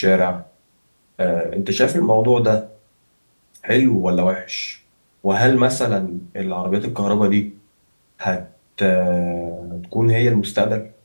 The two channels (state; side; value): inverted; both; correlation -1.00